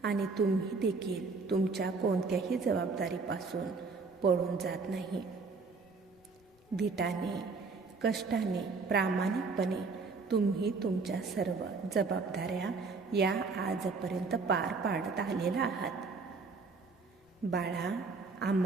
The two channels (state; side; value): quieter; left; 4.4 dB